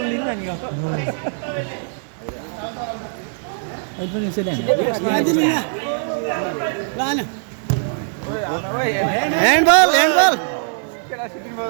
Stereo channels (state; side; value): silent; left; 61 dB below the other